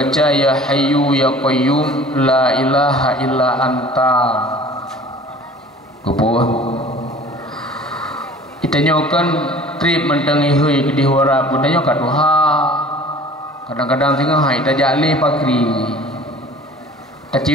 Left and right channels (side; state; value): both; normal; correlation 0.46